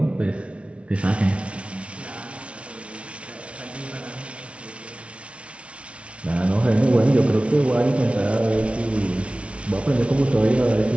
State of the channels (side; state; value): left; late; 0.061 ms